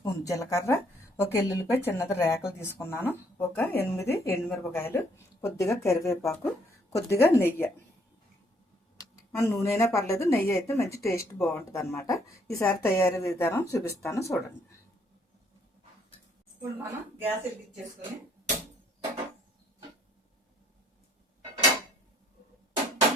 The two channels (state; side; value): normal; both; correlation 0.66